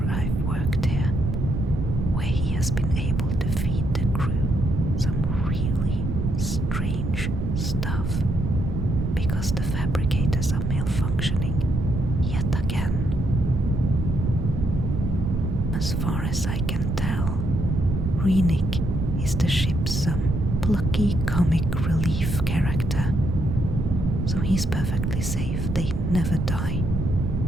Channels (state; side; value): noise; right; rumble, 1 dB below the sound